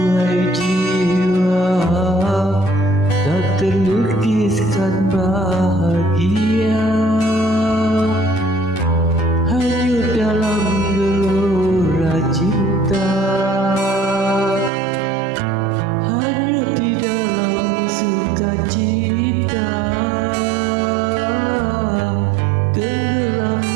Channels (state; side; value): drops out; left; at 14.7 s